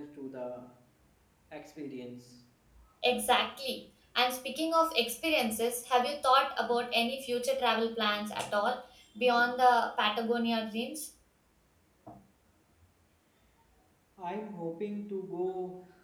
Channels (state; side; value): identical; both; correlation 1.00